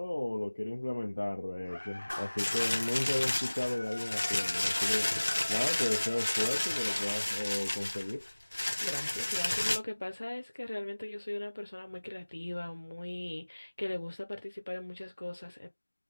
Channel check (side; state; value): both; inverted; correlation -1.00